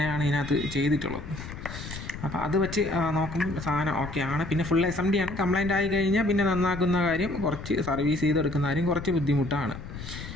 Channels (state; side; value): noise; left; rumble, 10 dB below the sound